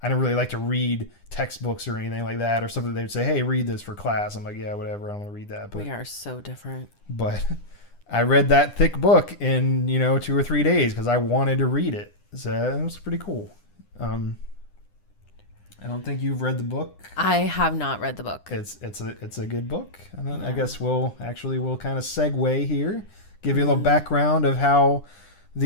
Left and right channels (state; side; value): late; right; 9.9 ms